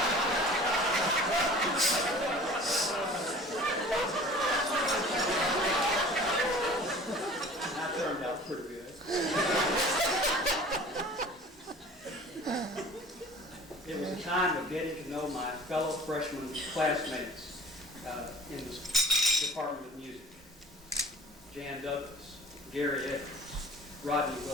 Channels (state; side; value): normal; both; correlation 0.45